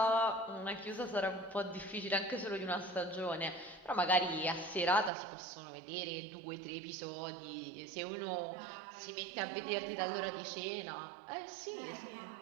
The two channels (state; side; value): drops out; left; at 5.1 s